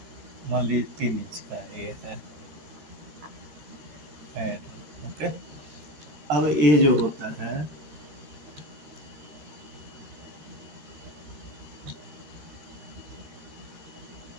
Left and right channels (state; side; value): late; left; 13 ms